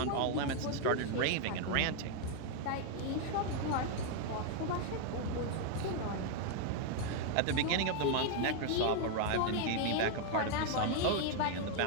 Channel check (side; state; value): both; different; correlation 0.00